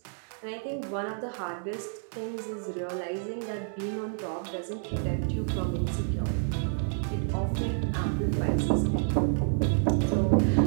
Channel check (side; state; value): left; silent; digital silence